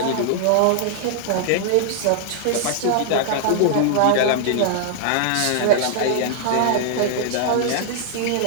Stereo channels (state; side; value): different; both; correlation -0.01